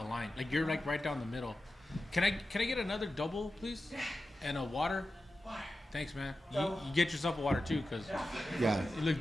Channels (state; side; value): normal; both; correlation 0.93